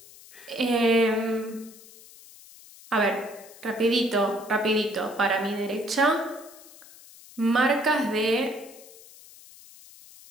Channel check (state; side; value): noise; left; hiss, 21 dB below the sound